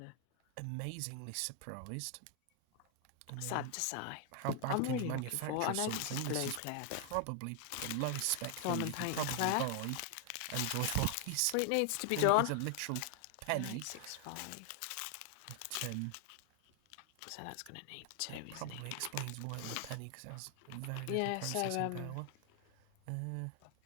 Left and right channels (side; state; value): both; different; correlation 0.00